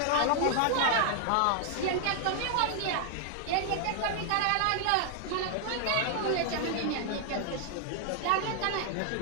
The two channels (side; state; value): both; different; correlation 0.00